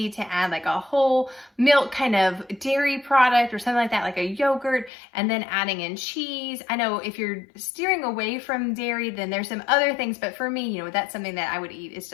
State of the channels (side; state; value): right; drops out; at 4.9 s